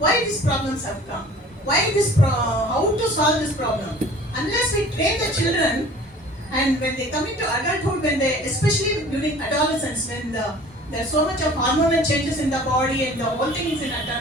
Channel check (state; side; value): normal; both; correlation 0.47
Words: these problems have come? How to solve this problem? Unless we train the children, and when they come into adulthood, especially during adolescence, when there's so much of hormonal changes in the body and the whole thing is in a